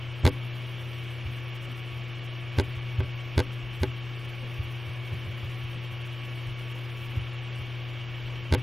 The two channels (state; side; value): normal; both; correlation 0.96